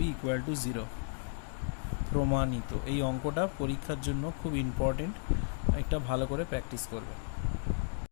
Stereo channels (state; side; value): silent; right; digital silence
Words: ইকুয়াল টু 0। প্রমাণিত। এই অঙ্কটা পরীক্ষার জন্য খুব ইম্পর্টেন্ট, একটা ভালো করে প্র্যাকটিস করবে।